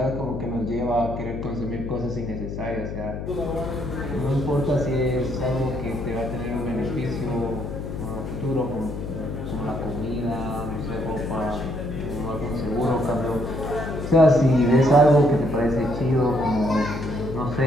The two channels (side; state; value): left; noise; hum, 6 dB below the sound